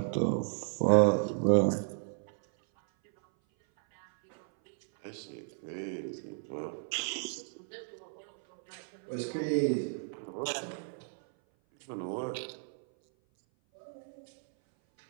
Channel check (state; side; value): silent; left; 55 dB below the other